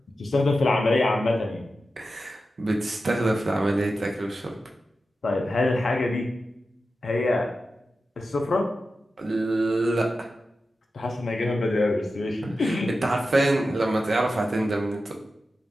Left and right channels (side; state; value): both; normal; correlation 0.92